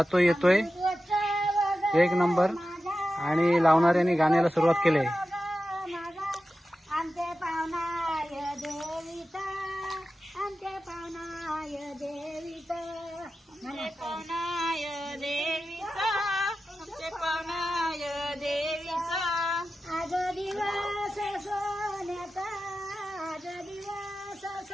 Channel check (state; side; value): normal; both; correlation 0.93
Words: येतोय एक नंबर. आणि लावणाऱ्यांनी गाण्याला सुरुवात केली आहे.